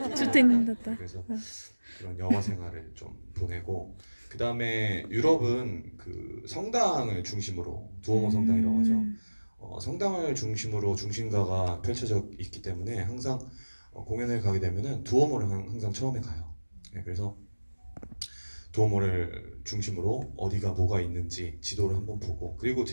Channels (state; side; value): inverted; both; correlation -1.00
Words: 주택님답다. 그래서 그런 영화 생활을 좀 보내고 그 다음에 유럽은 그 성당을 중심으로 두오모 성당이라고 하죠. 성당을 중심으로 중심가가 펼쳐져 있기 때문에 항상 공연을 가게 되면은 두오모를 항상 처음에 가요. 네, 그래서 두오모를 중심으로 어디가 뭐가 있는지 지도를 한번 보고 그리고